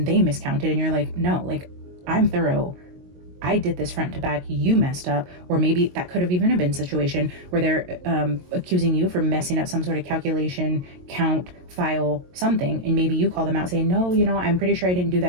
they miscounted, and you're like, no, like I'm thorough. I did this front to back, you messed up. Or maybe that could have even been a situation where they're accusing you for messing up some sort of calculation, count, file, something. And maybe you call them out saying, no, you know, I'm pretty sure I didn't do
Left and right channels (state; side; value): late; left; 22 ms